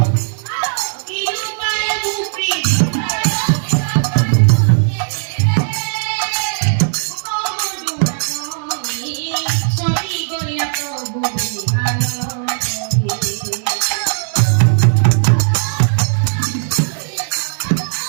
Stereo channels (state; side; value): silent; left; 67 dB below the other